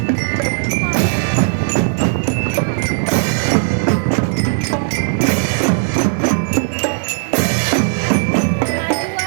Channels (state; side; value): silent; left; 57 dB below the other